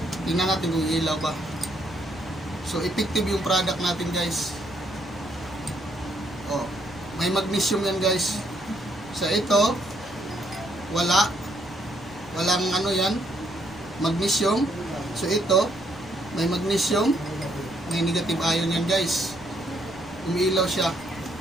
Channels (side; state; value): right; noise; rumble, 23 dB below the sound